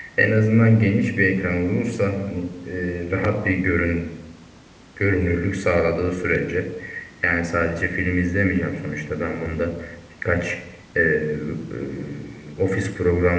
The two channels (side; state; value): both; identical; correlation 1.00